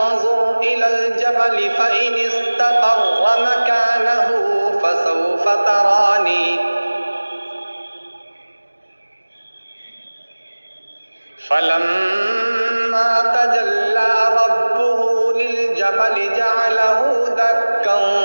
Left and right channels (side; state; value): both; inverted; correlation -1.00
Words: इलल जबल फ़इन इस्तक़र्र मकानहु फसौफ़ तरानी। फलम्मा तजल्ला रब्बुहु लिलजबल जअलहु दक्कन